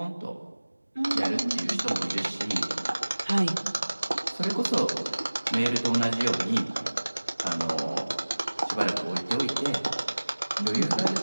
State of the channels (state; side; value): inverted; both; correlation -1.00